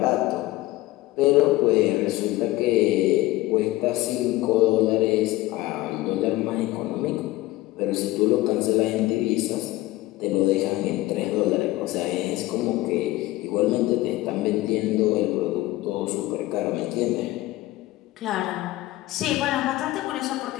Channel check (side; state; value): right; quieter; 17.6 dB